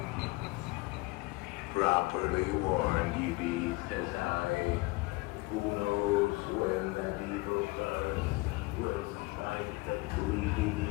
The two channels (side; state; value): right; quieter; 23.4 dB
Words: Properly warned ye be, says I. Who knows when that evil curse will smite the